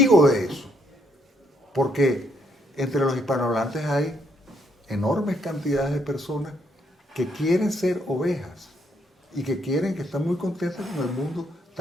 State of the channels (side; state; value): both; normal; correlation 0.72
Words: de eso. Porque entre los hispanohablantes hay enormes cantidades de personas que quieren ser ovejas y que están muy contentas con el mundo